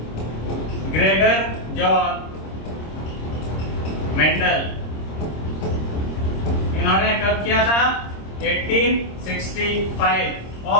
Gregor John Mendel. इन्होंने कब किया था? 1865।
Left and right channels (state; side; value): late; right; 26 ms